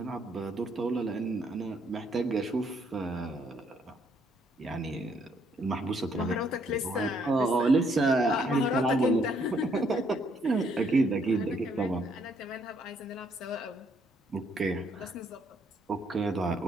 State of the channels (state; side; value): normal; both; correlation 0.69